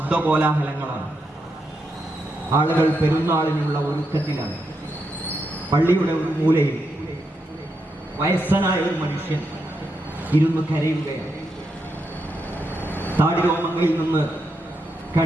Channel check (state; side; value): normal; both; correlation 0.83